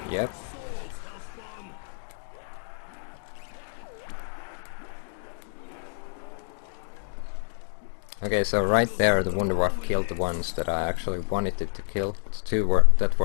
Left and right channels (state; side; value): silent; right; digital silence